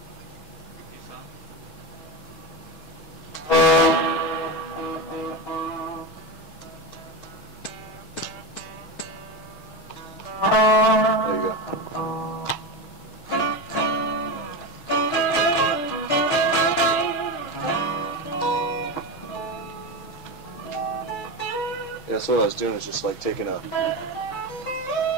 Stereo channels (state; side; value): late; right; 6.2 ms